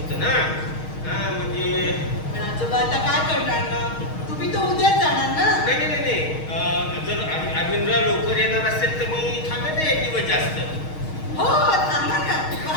ना. म्हणजे पण आजोबा आता काय करणार ना? तुम्ही तर उद्याच जाणार ना? नाही. जर अरविंदराव लवकर येणार असेल तर मी थांबेन एक दिवस जास्त. हो, थांबा ना. वा,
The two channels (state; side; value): late; right; 6.4 ms